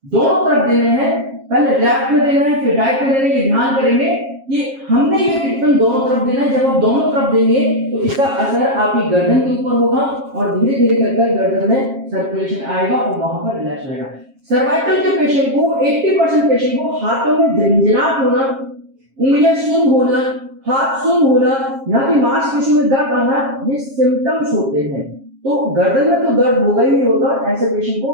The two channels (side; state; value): left; late; 7.4 ms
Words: दोनों तरफ देने हैं, पहले लेफ्ट में देना है फिर राइट में देना है, ये ध्यान करेंगे कि हमने ये ट्रीटमेंट दोनों तरफ देना है। जब आप दोनों तरफ देंगे तो इसका असर आपकी गर्दन के ऊपर होगा और धीरे धीरे कर गर्दन में सर्कुलेशन आएगा और वहां पर रिलैक्स होगा। सर्वाइकल के पेशेंट को 80% पेशेंट को हाथों में झंझनाहट होना, उंगलियां सुन्न होना, हाथ सुन्न होना, यहाँ की मांसपेशियों में दर्द आना, ये सिम्टम्स होते हैं। तो गर्दन में तो दर्द होगा ही होता है, ऐसे पेशेंट